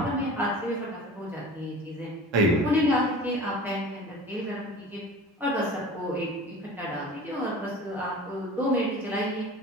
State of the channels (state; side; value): normal; both; correlation 0.39